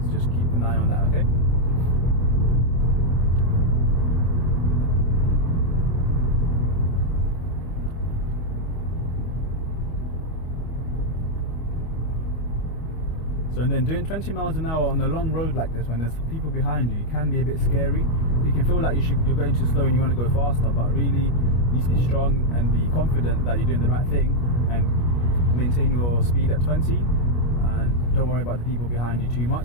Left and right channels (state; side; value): late; right; 25 ms